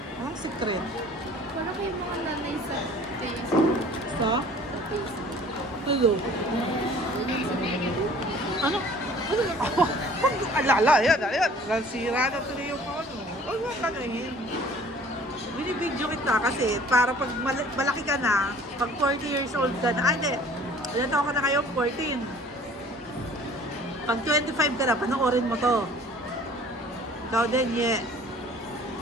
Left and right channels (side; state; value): both; normal; correlation 0.50